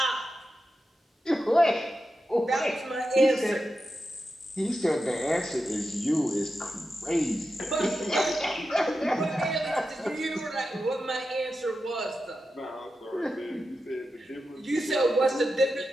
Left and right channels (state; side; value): normal; both; correlation 0.90